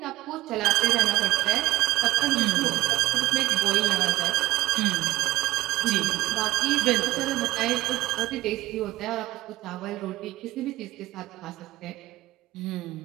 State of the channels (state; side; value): quieter; left; 16.5 dB